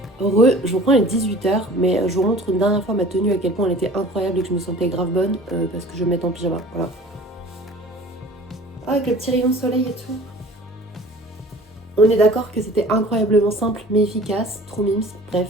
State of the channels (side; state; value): both; normal; correlation 0.45